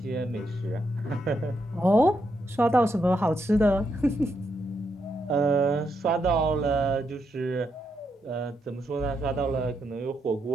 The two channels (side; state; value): both; normal; correlation 0.80